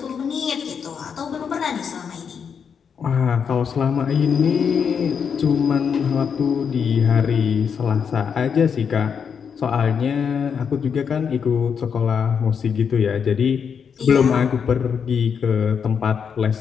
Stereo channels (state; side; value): quieter; right; 6.8 dB